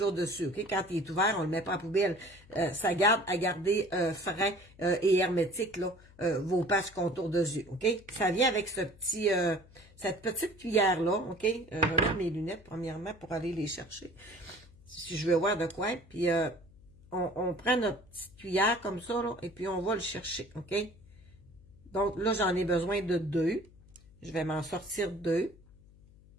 dessus. Okay? Quand il est ouvert, on le met pas en poubelle. Ça garde à garder frais et hermétique là, vos patchs contour de yeux. Okay? Ça vient avec cette petite cuillère-là. Okay? Je vais mettre mes lunettes premièrement pour aller les chercher. Si je veux voir de quoi. Puis on prend notre petite cuillère comme ça, là, et puis on va le chercher. OK? Donc là, j'en ai besoin de 2. Je vais m'en sortir 2.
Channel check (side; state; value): left; noise; hum, 24 dB below the sound